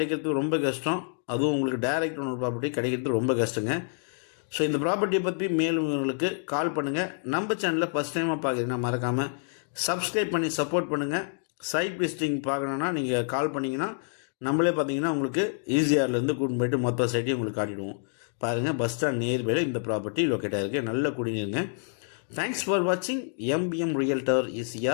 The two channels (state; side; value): silent; right; 60 dB below the other